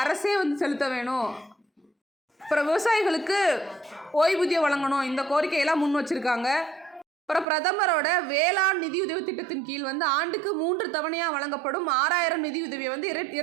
அரசே வந்து செலுத்த வேணும். அப்புறம் விவசாயிகளுக்கு ஓய்வூதியம் வழங்கணும். இந்த கோரிக்கையெல்லாம் முன் வச்சுருக்காங்க. அப்புறம் பிரதமரோட வேளாண் நிதியுதவி திட்டத்தின் கீழ் வந்து ஆண்டுக்கு 3 தவணையாக வழங்கப்படும் 6000 நிதியுதவியை வந்து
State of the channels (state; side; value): drops out; left; at 7.5 s